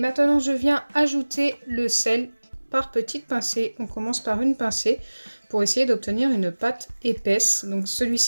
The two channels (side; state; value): both; inverted; correlation -1.00